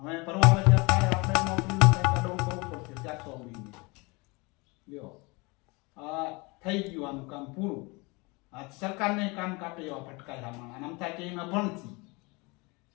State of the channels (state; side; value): quieter; right; 26.9 dB